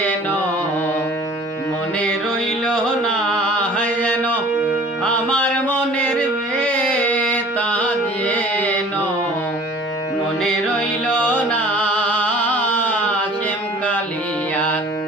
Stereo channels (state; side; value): normal; both; correlation 0.47